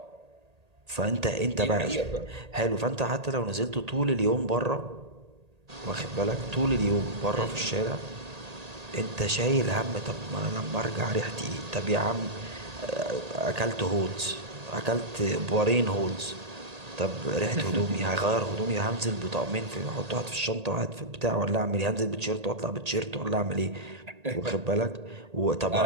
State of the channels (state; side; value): late; left; 1.8 ms